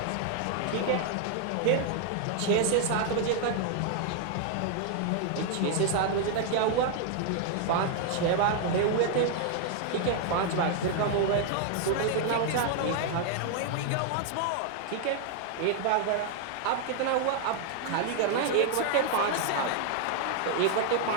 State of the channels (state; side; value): different; both; correlation 0.00